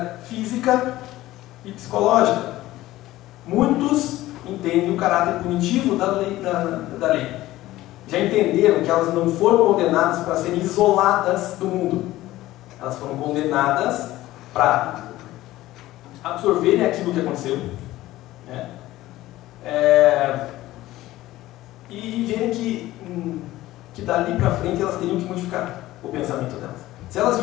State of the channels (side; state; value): right; quieter; 16.3 dB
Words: física e psicológica. Muitos entendem o caráter punitivo da lei. Já entenderam que elas não foram condenadas para serem isoladas do mundo. Elas foram condenadas para absorverem aquilo que aconteceu, e verem que dali para frente elas teriam que modificar o pensamento delas. Se elas